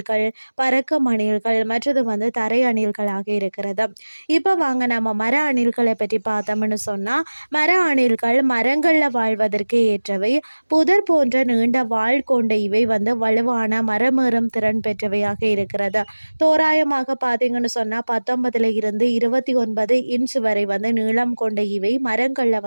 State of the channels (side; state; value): both; inverted; correlation -1.00